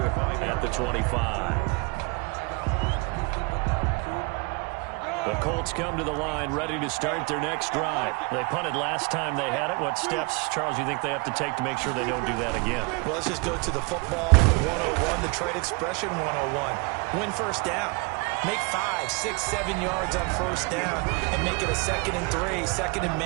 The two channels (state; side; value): quieter; left; 29.6 dB